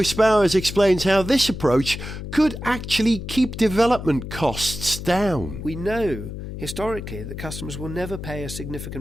Spowers explains how this approach could actually keep development costs down. We know historically that customers will never pay a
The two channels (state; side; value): noise; left; hum, 8 dB below the sound